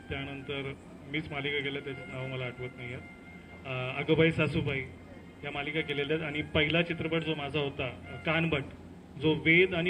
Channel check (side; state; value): both; identical; correlation 1.00